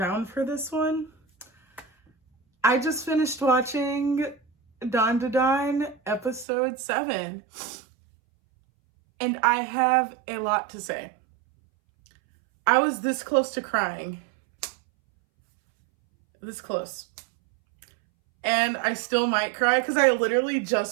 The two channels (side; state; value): left; drops out; at 6.5 s